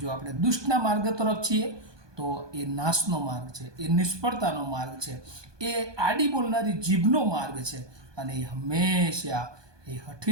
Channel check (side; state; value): left; late; 1.2 ms